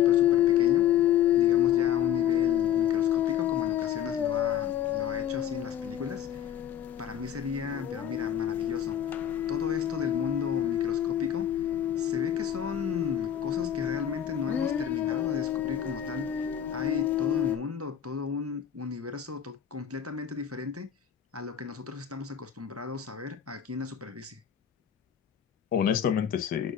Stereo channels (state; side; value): quieter; right; 9.9 dB